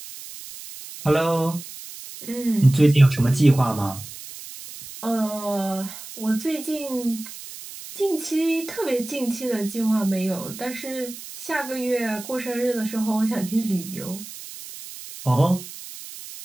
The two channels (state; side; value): noise; right; hiss, 13 dB below the sound